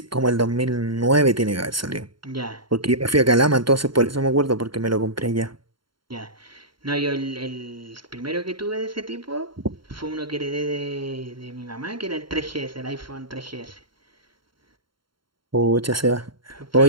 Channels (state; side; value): late; left; 0.73 ms